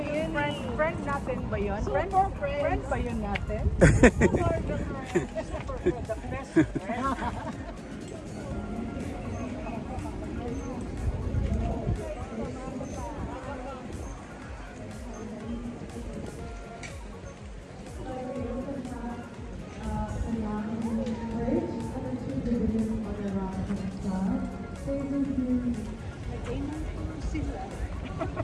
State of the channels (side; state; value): both; identical; correlation 1.00